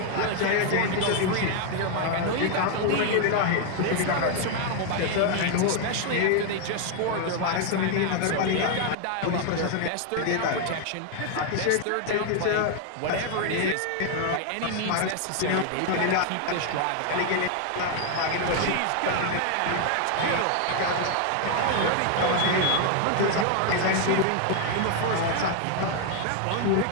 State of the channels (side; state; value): both; different; correlation 0.00